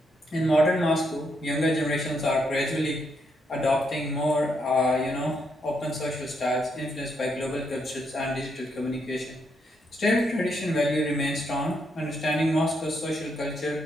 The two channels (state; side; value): normal; both; correlation 0.77